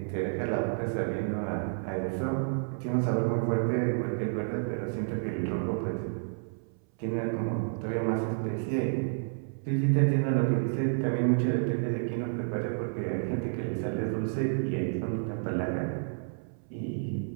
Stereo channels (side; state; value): left; silent; 58 dB below the other